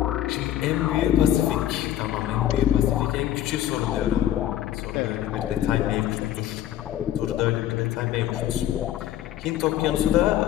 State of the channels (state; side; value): quieter; right; 12.1 dB